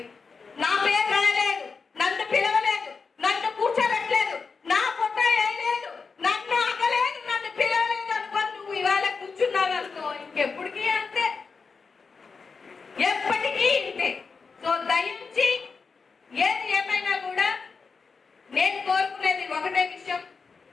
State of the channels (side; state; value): right; quieter; 4.9 dB